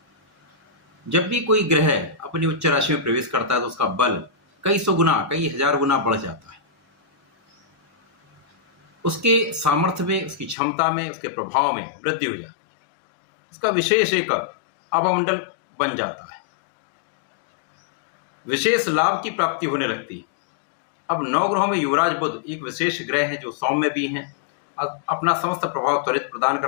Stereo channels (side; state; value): right; drops out; at 10.6 s